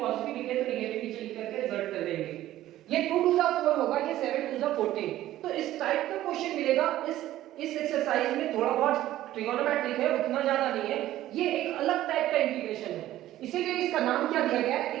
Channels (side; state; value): left; quieter; 14.2 dB